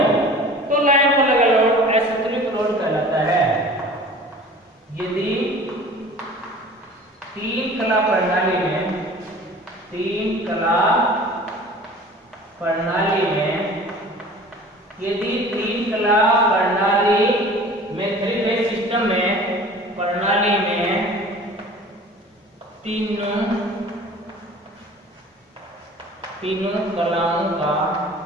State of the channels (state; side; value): normal; both; correlation 0.44